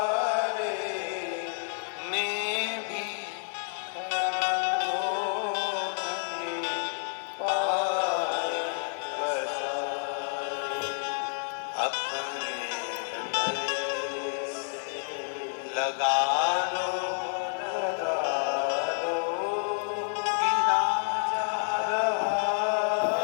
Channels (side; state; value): right; silent; 58 dB below the other